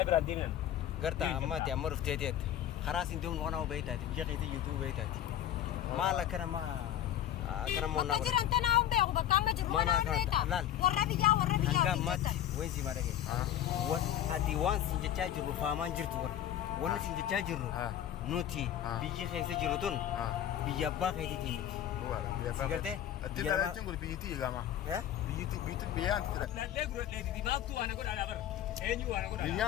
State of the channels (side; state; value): right; quieter; 11.3 dB